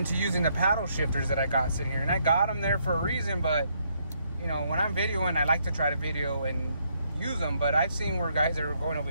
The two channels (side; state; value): both; inverted; correlation -0.73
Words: to using the paddle shifters that I got sitting here. And I got them there for a reason, but you know, when I'm videoing, I like to try to video and use them, but I've seen where guys are going